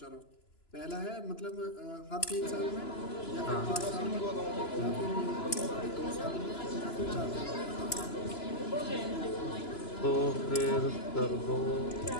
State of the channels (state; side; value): late; right; 2.9 ms